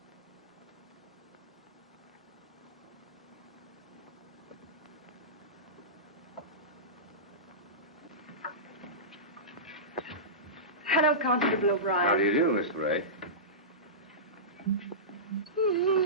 Hello, Constable O'Brien. How do you do, Miss Ray?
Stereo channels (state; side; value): normal; both; correlation -0.19